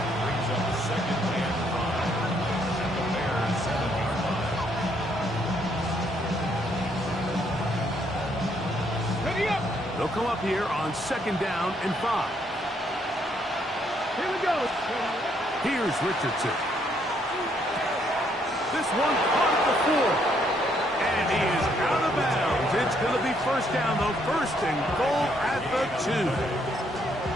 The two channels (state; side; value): normal; both; correlation 0.71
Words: They'll come up here on 2nd down and 5. Here we go. Here's Richardson. This one caught at the 4. And he is out of bounds. It's going to be 1st down, though. 1st and goal at the 2.